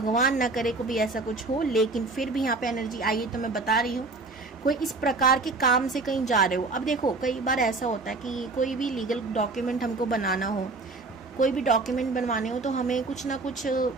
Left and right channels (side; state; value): left; quieter; 3.6 dB